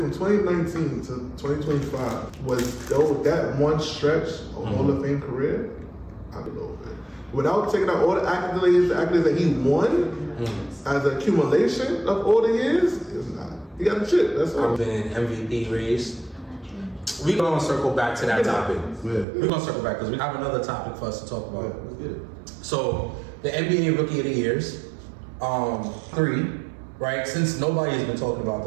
2019 to 2025 was though that one stretch of Hall of Fame career. I don't know, man. Without taking out all the accolades that he won as an accumulation of all the years, it's not. He got a chip. That's all. I've been MVP race. We're going to circle back to that topic. Yeah. We're going to circle back because we have another topic for us to talk about. Let's get it. So, the NBA Rookie of the Years, 3, right? Since nobody has been talking about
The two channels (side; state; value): left; drops out; at 19.2 s